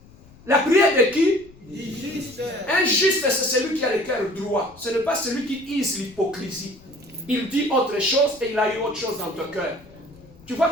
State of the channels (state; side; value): noise; left; rumble, 24 dB below the sound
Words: La prière de qui? Du juste. Un juste, c'est celui qui a le cœur droit. Ce n'est pas celui qui use l'hypocrisie. Il dit autre chose et il a eu autre chose dans ton cœur. Tu vois,